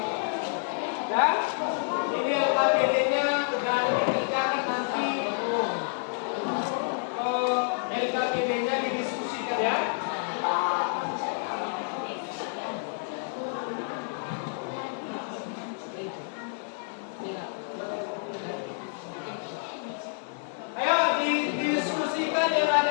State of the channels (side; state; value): right; silent; 57 dB below the other